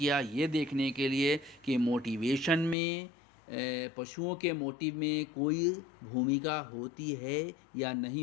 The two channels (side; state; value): right; drops out; at 2.8 s